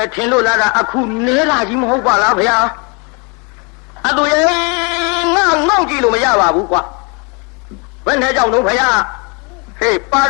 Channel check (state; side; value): quieter; right; 31.8 dB